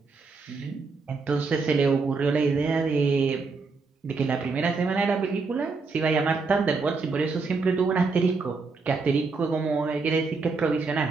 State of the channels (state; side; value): quieter; left; 4.3 dB